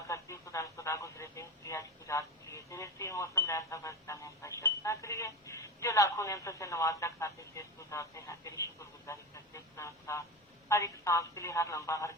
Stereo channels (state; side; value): normal; both; correlation 0.24